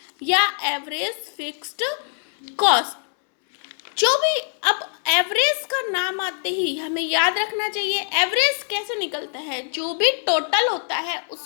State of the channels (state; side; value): silent; right; 63 dB below the other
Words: या एवरेज फिक्स्ड कॉस्ट। जो भी, अब एवरेज का नाम आते ही हमें याद रखना चाहिए एवरेज कैसे निकलता है। जो भी टोटल होता है